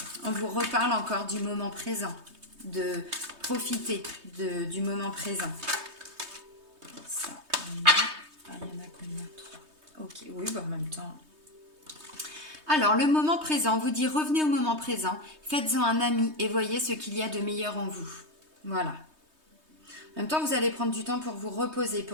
on vous reparle encore du moment présent, de profiter du moment présent. Ça, il y en a combien? 3. Ok, oui, bah en même temps. Alors, le moment présent, vous dit revenez au moment présent, faites-en un ami et voyez ce qu'il y a de meilleur en vous. Voilà. En même temps, vous allez prendre du temps pour vous reposer,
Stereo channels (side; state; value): left; late; 3.2 ms